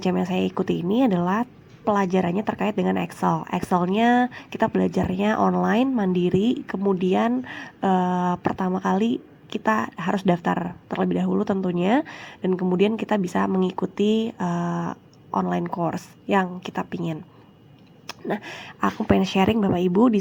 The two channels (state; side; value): identical; both; correlation 1.00